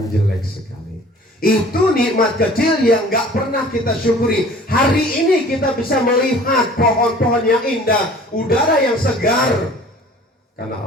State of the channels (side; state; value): both; normal; correlation 0.48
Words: jelek sekali. Itu nikmat kecil yang gak pernah kita syukuri. Hari ini kita bisa melihat pohon-pohon yang indah, udara yang segar, karena